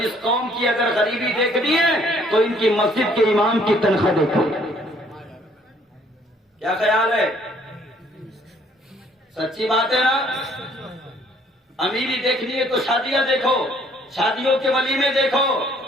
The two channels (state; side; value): normal; both; correlation 0.62